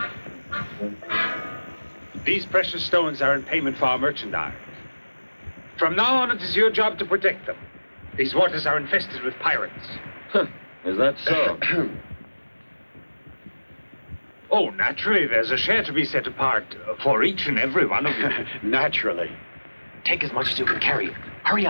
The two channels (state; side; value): inverted; both; correlation -1.00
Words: These precious stones are in payment for our merchandise. From now on, it is your job to protect them. These waters are infested with pirates. Is that so? Oh, naturally, there's a share to be set apart for each and every one of you. Naturally. Take as much as you can carry. Hurry